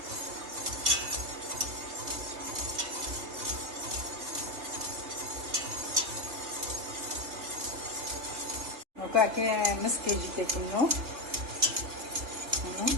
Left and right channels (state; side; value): late; left; 3.2 ms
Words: Aqui é mesquite que tem no,